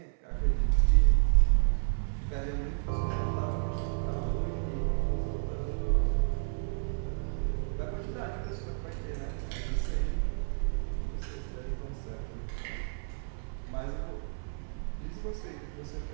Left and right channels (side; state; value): left; silent; 57 dB below the other